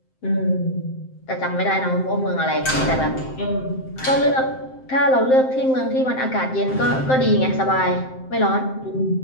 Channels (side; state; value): right; late; 7.7 ms